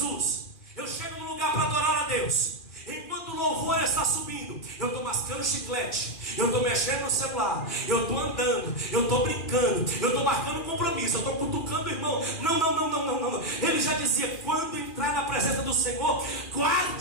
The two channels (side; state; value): right; late; 2.4 ms